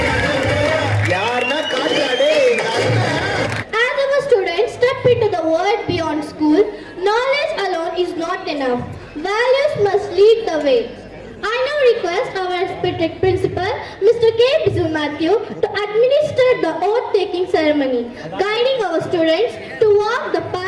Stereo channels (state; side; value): identical; both; correlation 1.00